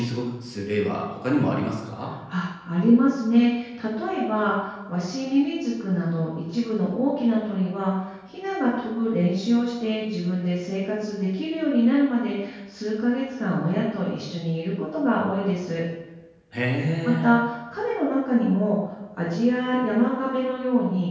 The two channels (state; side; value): identical; both; correlation 1.00